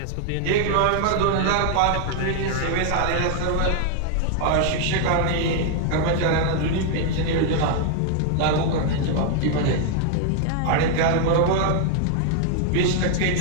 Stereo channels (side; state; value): both; different; correlation 0.00